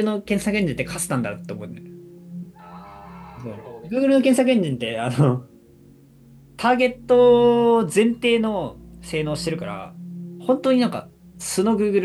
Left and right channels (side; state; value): both; identical; correlation 1.00